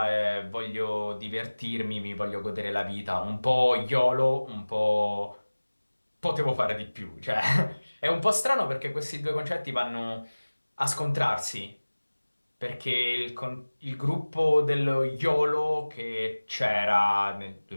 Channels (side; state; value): both; inverted; correlation -1.00